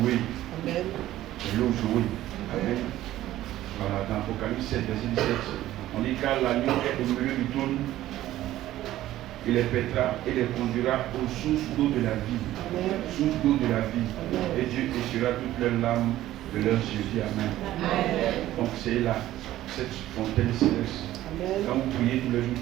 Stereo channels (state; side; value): quieter; left; 14.3 dB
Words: Amen. L'eau jouée. Amen. Voilà, dans Apocalypse 7, verset 17, on dit car l'agneau est au milieu du trône, il les pètera et les conduira aux sources d'eau de la vie. Amen. Source d'eau de la vie. Amen. Et Dieu essuiera toutes leurs larmes de leurs yeux. Dis Amen. Amen. Donc c'est là, cette fontaine céleste. Amen. Quand vous priez tous les jours,